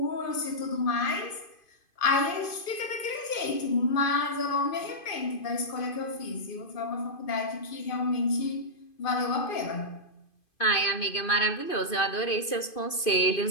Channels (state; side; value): late; right; 2.5 ms